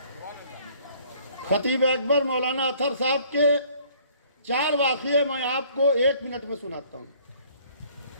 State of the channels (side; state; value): both; inverted; correlation -0.58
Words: خطیب اکبر مولانا اطہر صاحب کے 4 واقعے میں آپ کو 1 منٹ میں سناتا ہوں۔